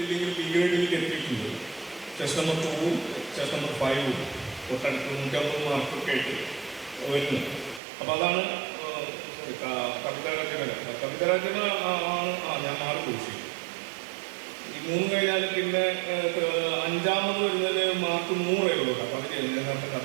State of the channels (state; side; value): drops out; left; at 7.8 s